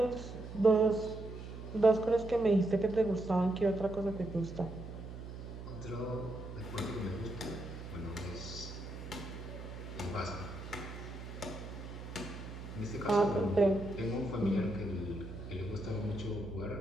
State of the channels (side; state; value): right; noise; hum, 10 dB below the sound